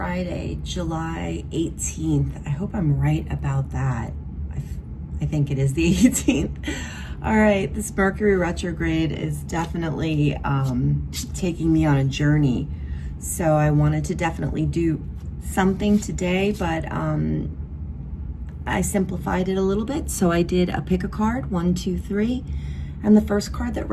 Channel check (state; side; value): identical; both; correlation 1.00